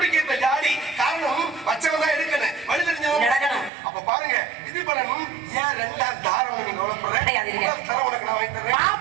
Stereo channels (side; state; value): left; drops out; at 3.7 s